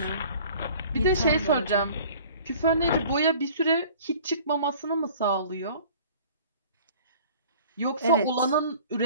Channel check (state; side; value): inverted; both; correlation -0.48